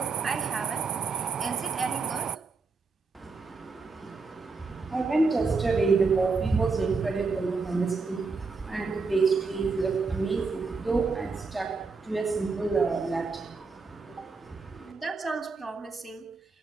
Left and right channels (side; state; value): left; quieter; 4.3 dB